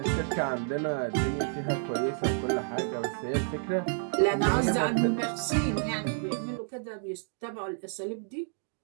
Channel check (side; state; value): left; silent; digital silence